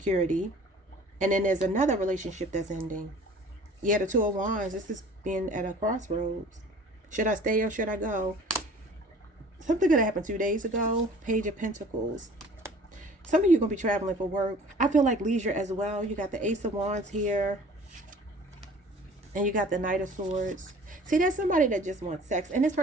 And then there's another relationship that's ending. Yeah, the Two of Wands. This is being at a crossroads. Should I stay or should I go? Something could have happened 2 days ago. Page of Pentacles. Some of you are going to be traveling for work. I feel like leisure as well. You got the Ace of Wands here. And you got the Knight of Swords. See, there's somebody that just wants sex. And this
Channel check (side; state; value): both; normal; correlation 0.48